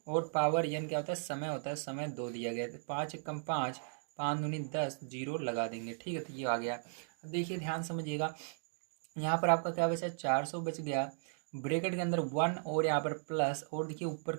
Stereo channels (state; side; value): silent; left; digital silence